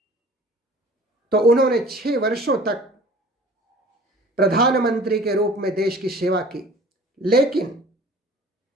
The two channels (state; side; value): normal; both; correlation 0.47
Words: तो उन्होंने 6 वर्षों तक प्रधानमंत्री के रूप में देश की सेवा की, लेकिन